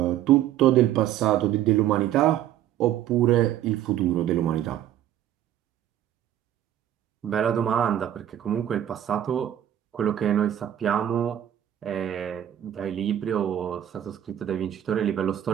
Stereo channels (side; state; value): left; quieter; 11.4 dB